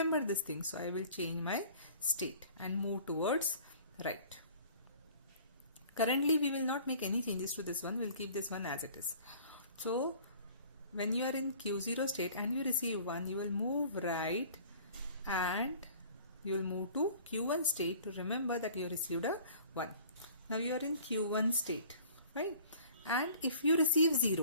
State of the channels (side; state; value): both; inverted; correlation -0.49